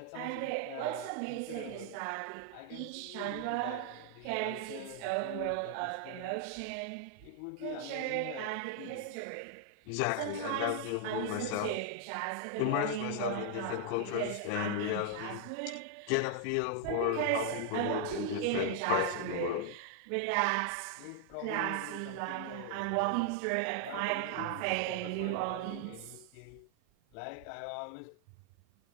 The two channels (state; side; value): different; both; correlation 0.00